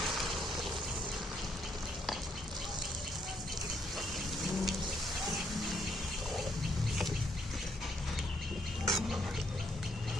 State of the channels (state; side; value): normal; both; correlation 0.73